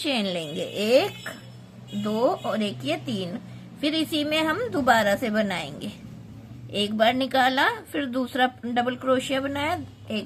लेंगे, 1 2 और एक ये 3। फिर इसी में हम दोबारा से बनाएंगे। एक बार निकाला, फिर दूसरा डबल क्रोशिया बनाया,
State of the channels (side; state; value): both; identical; correlation 1.00